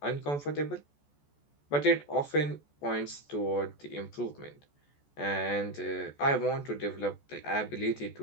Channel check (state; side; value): late; right; 14 ms